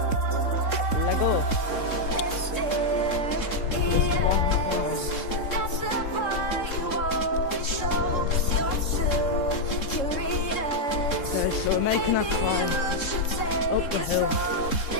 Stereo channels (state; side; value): late; right; 3.7 ms